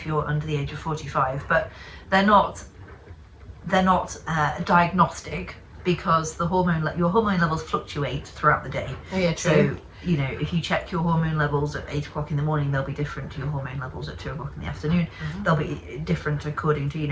you're under the age of 45, but they're not diagnostic, because your hormone levels fluctuate throughout the day. Oh yeah, So, true. you know, if you check your hormone levels at 8 o'clock in the morning, they'll be different to your hormone levels at 2 o'clock in the afternoon. They'll be different according to, you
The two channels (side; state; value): both; identical; correlation 1.00